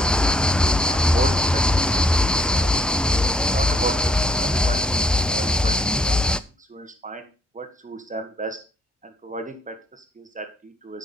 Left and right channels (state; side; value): normal; both; correlation 0.68